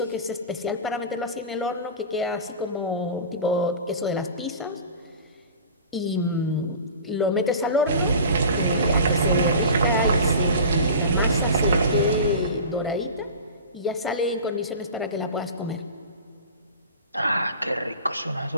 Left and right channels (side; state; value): both; inverted; correlation -0.35